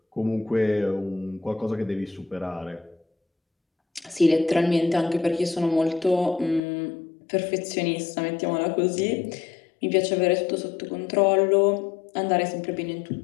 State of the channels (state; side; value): drops out; right; at 6.6 s